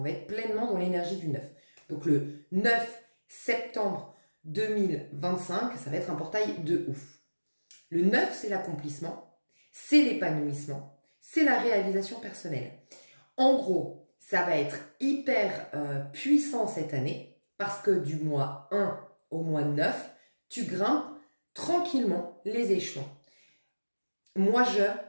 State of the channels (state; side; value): inverted; both; correlation -1.00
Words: va être pleinement dans l'énergie du 9. Donc le 9 septembre 2025, ça va être un portail de ouf. Le 9, c'est l'accomplissement, c'est l'épanouissement, c'est la réalisation personnelle. En gros, ça va être hyper puissant cette année parce que du mois 1 au mois 9, tu grimpes tranquillement les échelons. Moi,